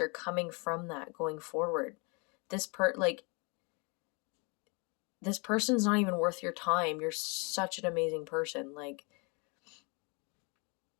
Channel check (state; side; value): quieter; right; 31.6 dB